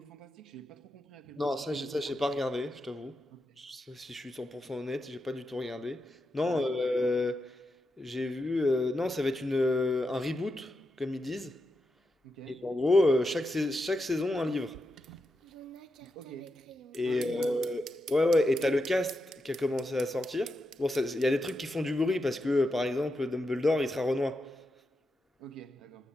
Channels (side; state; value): both; normal; correlation 0.87